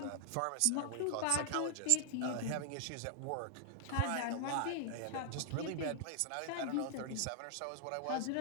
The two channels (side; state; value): both; different; correlation 0.00